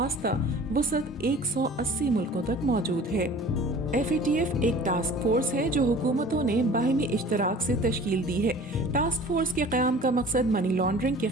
وسعت 180 ملکوں تک موجود ہے۔ FATF ایک ٹاسک فورس ہے جو حکومتوں نے باہمی اشتراک سے تشکیل دی ہے۔ ٹاسک فورس کے قیام کا مقصد منی لانڈرنگ کے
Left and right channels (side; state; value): both; normal; correlation 0.45